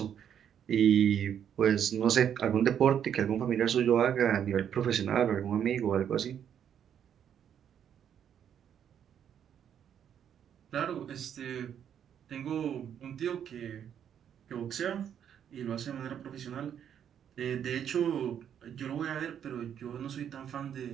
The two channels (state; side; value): quieter; left; 9.0 dB